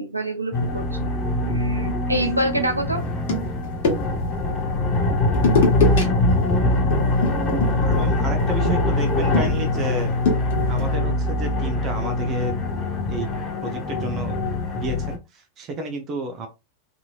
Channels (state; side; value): normal; both; correlation -0.10